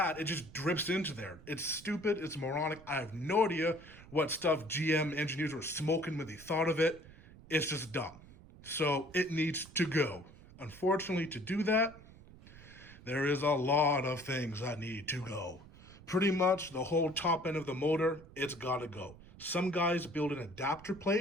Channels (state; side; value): noise; right; rumble, 20 dB below the sound